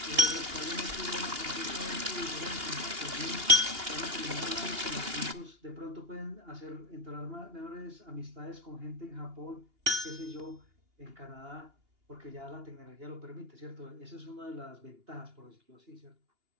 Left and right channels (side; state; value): left; late; 2.8 ms